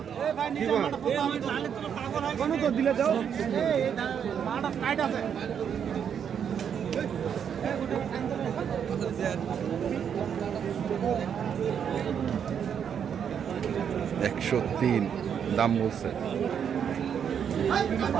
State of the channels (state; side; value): quieter; left; 8.0 dB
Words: দিলে দাও। 103 দাম বলছে।